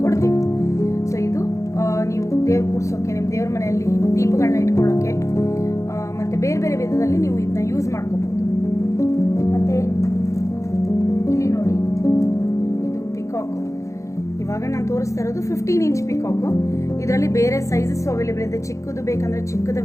ಕೊಡ್ತೀವಿ. ಸೊ ಇದು ನೀವು ದೇವ್ರ ಕೂರ್ಸೋಕ್ಕೆ, ನಿಮ್ಮ ದೇವ್ರ ಮನೆಯಲ್ಲಿ ದೀಪಗಳನ್ನ ಇಟ್ಕೊಳ್ಳೋಕ್ಕೆ, ಮತ್ತು ಬೇರೆ ಬೇರೆ ವಿಧದಲ್ಲಿ ನೀವು ಇದನ್ನ ಯೂಸ್ ಮಾಡ್ಕೋಬೋದು. ಮತ್ತು ಇಲ್ಲಿ ನೋಡಿ, ಇದು ಪಿಕಾಕು. ಇವಾಗ ನಾನು ತೋರಿಸ್ತಾ ಇರೋದು 15 ಇಂಚ್ ಪಿಕಾಕು. ಇದರಲ್ಲಿ ಬೇರೆ ಸೈಜಸ್ ಅವೈಲೇಬಲ್ ಇದೆ. ಚಿಕ್ಕದು ಬೇಕಂದ್ರೆ ಚಿಕ್ಕದು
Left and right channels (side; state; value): right; late; 0.15 ms